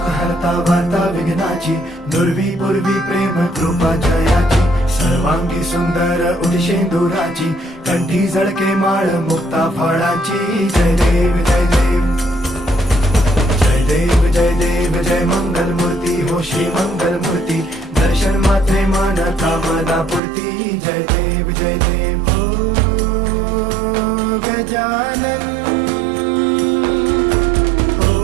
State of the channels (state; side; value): drops out; left; at 20.2 s